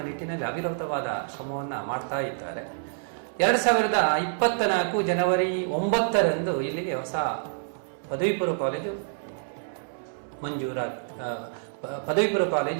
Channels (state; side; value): silent; left; 60 dB below the other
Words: ನಿಟ್ಟಿನಲ್ಲಿ ಅವಿರತವಾದ ಶ್ರಮವನ್ನು ಮಾಡ್ತಾ ಇದ್ದಾರೆ. 2024 ಜನವರಿ 9ರಂದು ಇಲ್ಲಿಗೆ ಹೊಸ ಪದವಿ ಪೂರ್ವ ಕಾಲೇಜು ಮಂಜೂರಾಯಿತು.